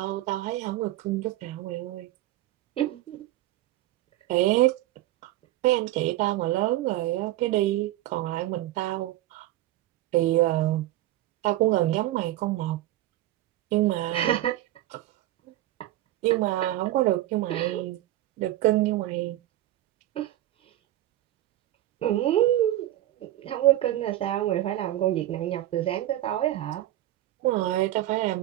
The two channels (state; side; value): quieter; left; 14.9 dB